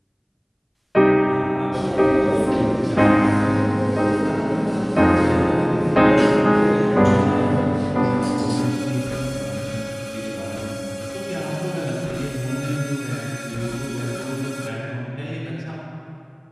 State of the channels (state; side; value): identical; both; correlation 1.00